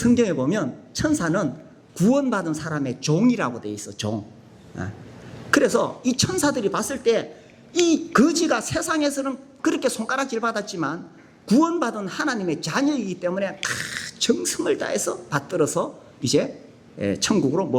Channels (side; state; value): both; identical; correlation 1.00